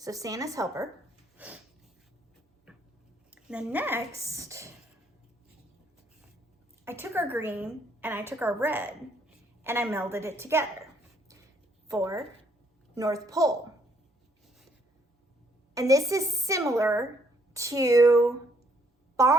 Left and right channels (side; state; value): both; normal; correlation 0.68